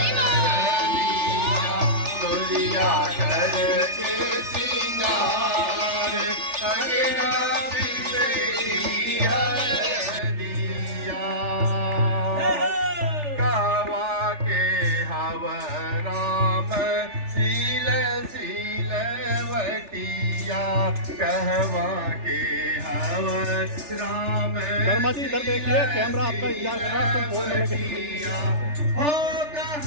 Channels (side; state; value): left; late; 3.4 ms